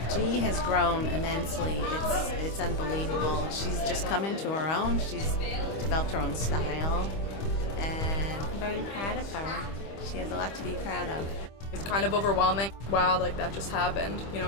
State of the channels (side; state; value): right; late; 25 ms